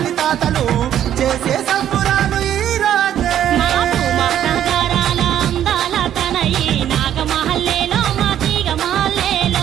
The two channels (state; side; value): quieter; left; 10.8 dB